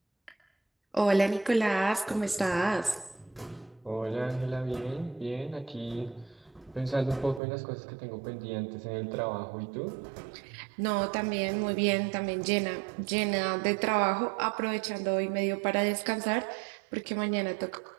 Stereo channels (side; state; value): left; drops out; at 7.4 s